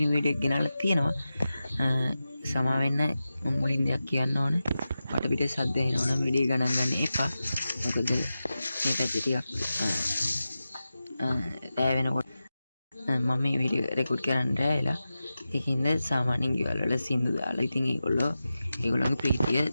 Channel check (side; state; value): both; inverted; correlation -0.93